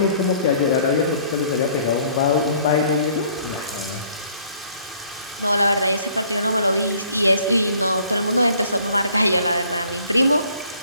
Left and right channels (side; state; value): both; inverted; correlation -0.59